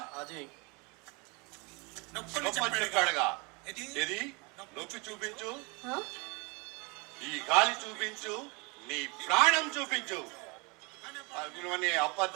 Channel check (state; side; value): quieter; left; 29.4 dB